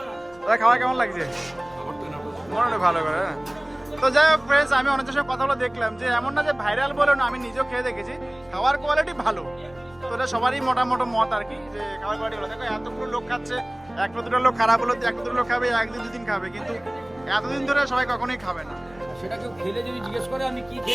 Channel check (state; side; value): noise; left; rumble, 26 dB below the sound